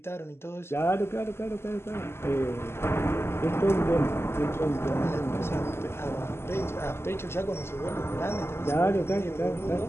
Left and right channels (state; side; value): late; right; 0.12 ms